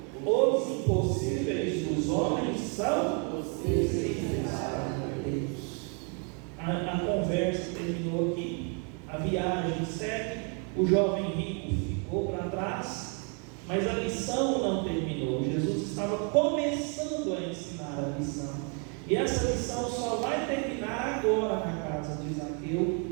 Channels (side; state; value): left; quieter; 37.5 dB